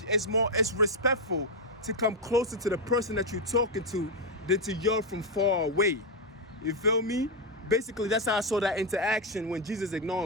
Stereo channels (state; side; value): normal; both; correlation 0.04